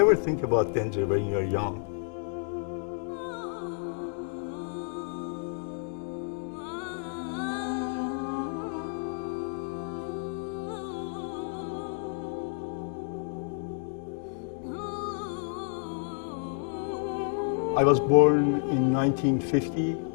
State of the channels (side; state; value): right; silent; digital silence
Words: think about danger when you're young. I was born in 1950